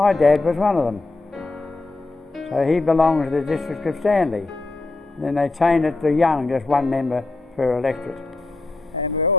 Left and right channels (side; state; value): right; quieter; 3.2 dB